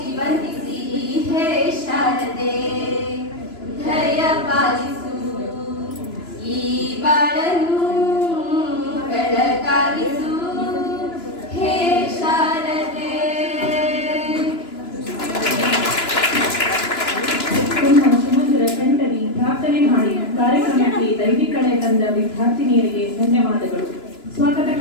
ಹೇ ಶಾರದೆ ದಯ ಪಾಲಿಸು, ಈ ಬಾಳನ್ನು ಬೆಳಕಾಗಿಸು. ಹೇ ಶಾರದೆ. ಸಮುದ್ರ ಕಂಠರಿ ಪ್ರಾರ್ಥನೆ ಮಾಡಿ ಕಾರ್ಯಕ್ರಮಕ್ಕೆ ದೈವಿಕಳೆ ತಂದ ವಿದ್ಯಾರ್ಥಿನಿಯರಿಗೆ ಧನ್ಯವಾದಗಳು. ಸ್ವಾಗತ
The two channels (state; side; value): late; right; 2.9 ms